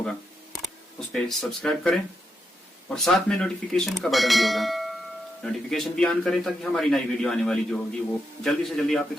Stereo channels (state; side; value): normal; both; correlation 0.83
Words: اس پہ سبسکرائب کریں اور ساتھ میں نوٹیفیکیشن کا بٹن بھی ہوگا, نوٹیفیکیشن بھی آن کریں تاکہ ہماری نئی ویڈیو آنے والی جو ہوگی وہ جلدی سے جلدی آپ